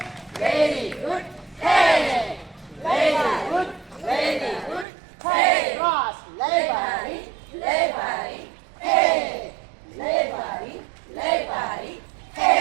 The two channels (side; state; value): left; drops out; at 4.9 s